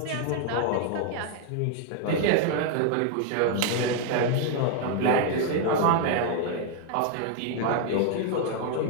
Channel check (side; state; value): both; different; correlation 0.00